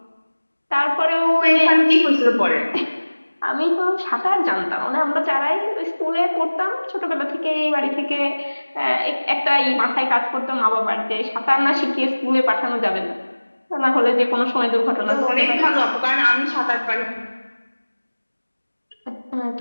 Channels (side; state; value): both; inverted; correlation -1.00